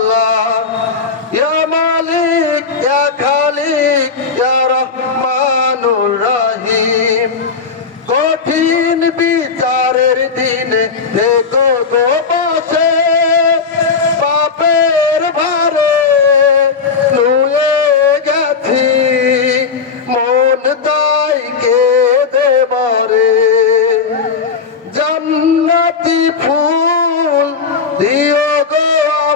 ইয়া মালিক ইয়া খালিক ইয়া রহমানুর রহিম। কঠিন বিচারের দিনে দেখো গো বসে, পাপের ভারে নুয়ে গেছি, মন তাই কেঁদে মরে। জান্নাতি ফুল দিও গো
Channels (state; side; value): quieter; right; 5.2 dB